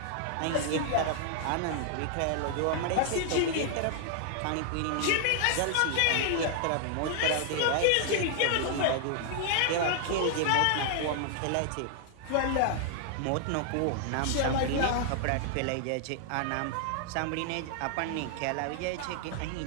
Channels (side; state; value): both; different; correlation 0.00